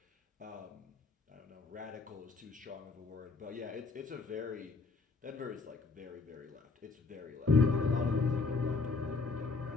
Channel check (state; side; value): quieter; right; 4.1 dB